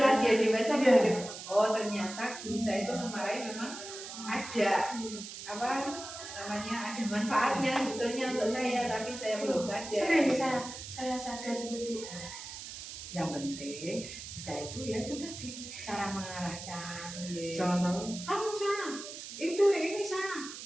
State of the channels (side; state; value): right; noise; hiss, 10 dB below the sound